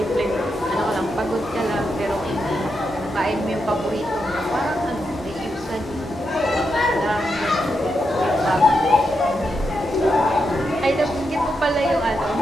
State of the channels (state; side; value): normal; both; correlation 0.84